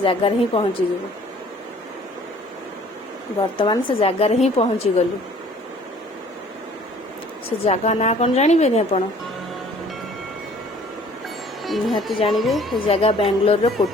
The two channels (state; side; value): normal; both; correlation 0.54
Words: जगह रे ही पहुंची जेबो वर्तमान से जगह रे ही पहुंची गलु से जगह ना कोन जानिबे नि आपण निहाती जानिबे से जगह बेंगलोर रो